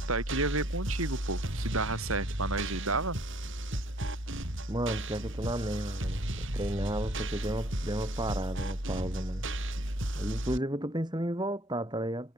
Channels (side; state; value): both; normal; correlation 0.60